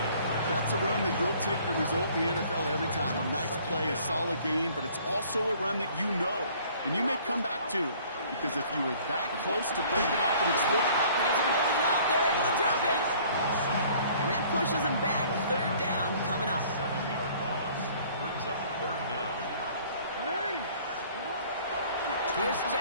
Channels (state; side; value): inverted; both; correlation -0.55